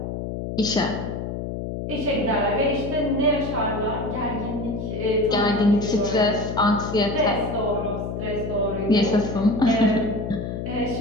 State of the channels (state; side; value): noise; left; hum, 5 dB below the sound